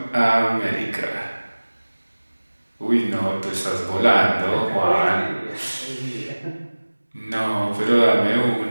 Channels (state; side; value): inverted; both; correlation -1.00